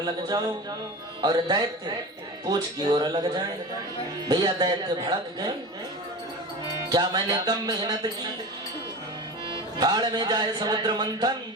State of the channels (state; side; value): normal; both; correlation 0.30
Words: लग जाओ और दैत्य पूंछ की ओर लग जाए। भैया दैत्य भड़क गए, क्या मैंने कम मेहनत की? भाड़ में जाए समुद्र मंथन,